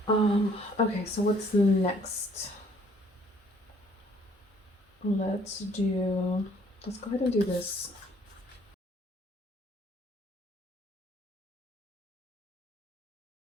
Okay, so what's next? Let's go ahead and do this.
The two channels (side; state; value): both; normal; correlation 0.61